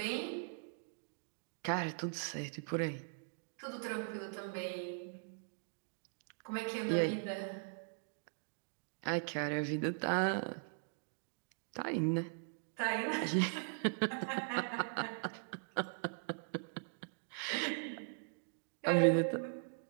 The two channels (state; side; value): silent; left; digital silence